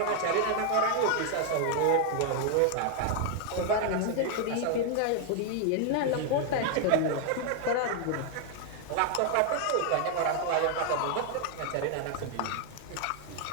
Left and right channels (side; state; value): both; different; correlation 0.00